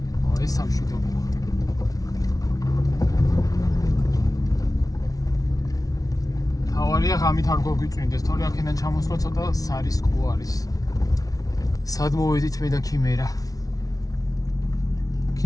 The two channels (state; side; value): late; right; 0.18 ms